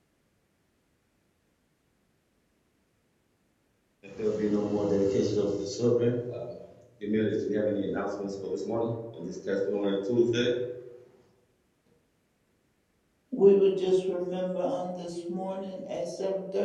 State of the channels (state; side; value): identical; both; correlation 1.00